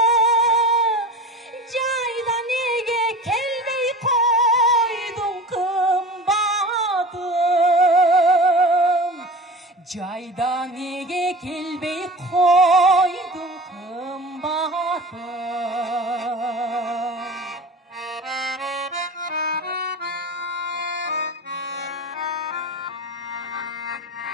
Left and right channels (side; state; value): both; normal; correlation 0.34